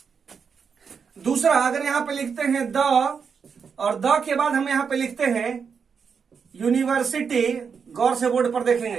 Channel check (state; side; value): quieter; left; 6.2 dB